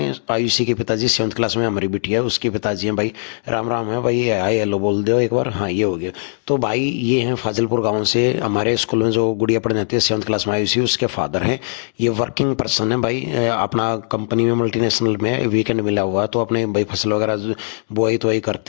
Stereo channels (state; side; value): silent; right; digital silence